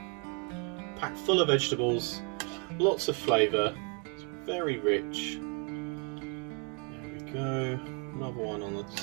packed full of vegetables, lots of flavour, it's very rich. There we go, another one on the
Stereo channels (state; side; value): quieter; left; 36.1 dB